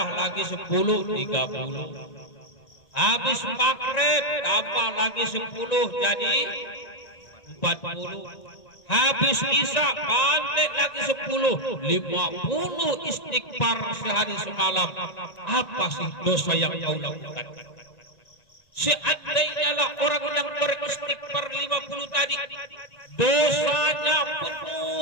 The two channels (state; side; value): late; right; 1.9 ms